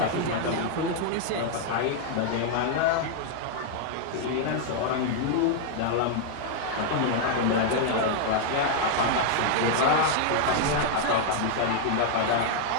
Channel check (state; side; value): different; both; correlation 0.00